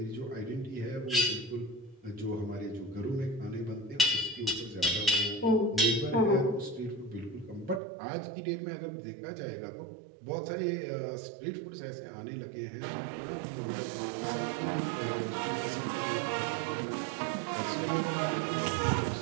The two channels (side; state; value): left; drops out; at 7.8 s